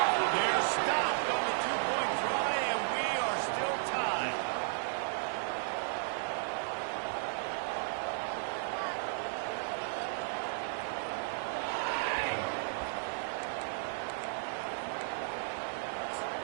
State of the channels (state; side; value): silent; left; digital silence